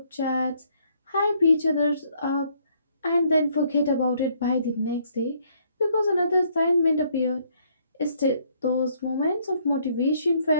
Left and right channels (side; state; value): both; inverted; correlation -0.67